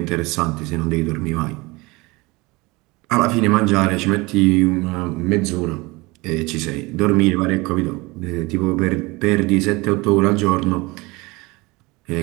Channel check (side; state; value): left; quieter; 23.7 dB